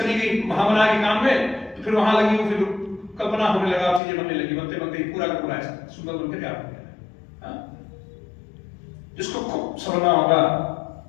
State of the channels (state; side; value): drops out; right; at 4.0 s